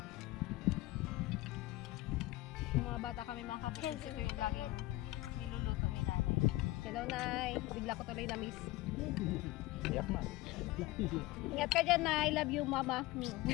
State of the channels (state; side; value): quieter; right; 18.8 dB